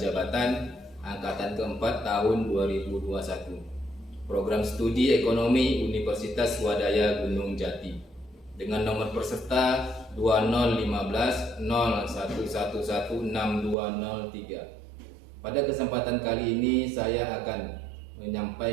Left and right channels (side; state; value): left; drops out; at 13.8 s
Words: angkatan keempat tahun 2021. Program Studi Ekonomi Universitas Swadaya Gunung Jati. Dengan nomor peserta 201501116203. Pada kesempatan kali ini saya akan